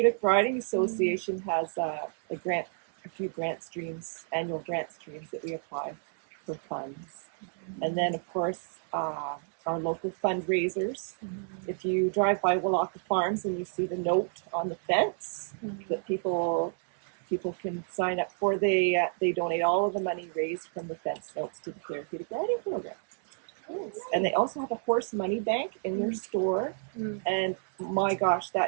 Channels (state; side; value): silent; left; digital silence